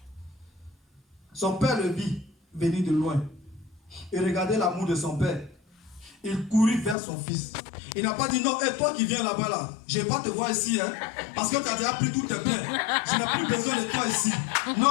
son père le vit venir de loin. Et regardez l'amour de son père. Il courut vers son fils. Il n'a pas dit non, et toi qui viens là-bas là, je ne vais pas te voir ici, hein, parce que tu as déjà pris tout tes biens. Je n'ai plus besoin de toi ici.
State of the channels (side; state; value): right; drops out; at 7.0 s